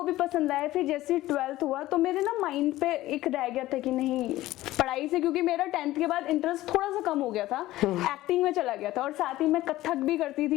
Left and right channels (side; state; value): right; quieter; 16.2 dB